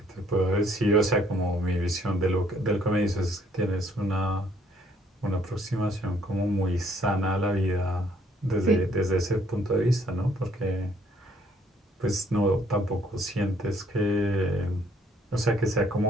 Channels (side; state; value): both; normal; correlation 0.65